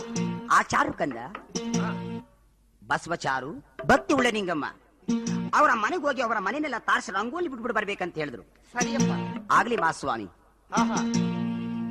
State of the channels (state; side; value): identical; both; correlation 1.00